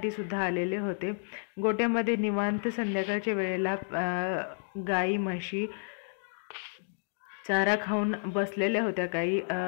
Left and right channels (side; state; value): right; silent; digital silence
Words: सुद्धा आलेले होते। गोट्यामध्ये निवांत संध्याकाळच्या वेळेला गाई म्हशी चारा खाऊन बसलेल्या होत्या, काही